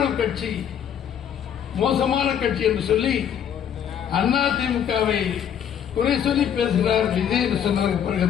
கட்சி, மோசமான கட்சி என்று சொல்லி அதிமுகவை குறை சொல்லி பேசுகிறார் விஜய் என்று சொன்னதற்கு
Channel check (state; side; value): quieter; right; 9.0 dB